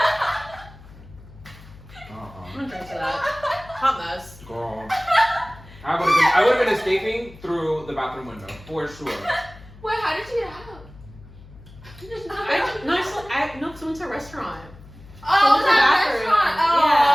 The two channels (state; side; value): noise; left; hum, 20 dB below the sound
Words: I'm gonna drink to that. Hot mess. Girl. I would have been escaping through the bathroom window, for sure. Wait, how did you get out? No, because we went to a restaurant. Oh, So it's it was at a a bathroom. restaurant.